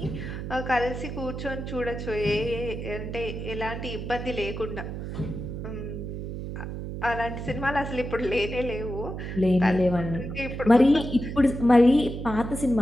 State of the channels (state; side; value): noise; right; hum, 6 dB below the sound